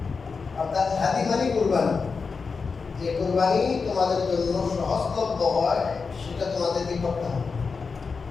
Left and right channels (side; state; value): right; quieter; 4.9 dB